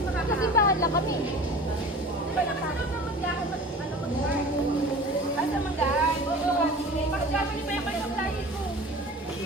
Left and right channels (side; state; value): both; normal; correlation 0.39